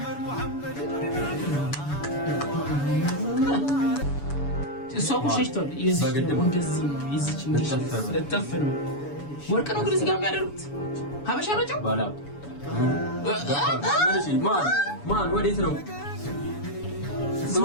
እሷ እኮ ሸሽቷል። እንደዚህ ነው ይዝች እጠፍ ነው ወርቅ ነው ግን እዚህ ጋር የሚያደርጉት ሀበሻ ናቸው። ማን ወዴት ነው?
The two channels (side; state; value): right; late; 7.0 ms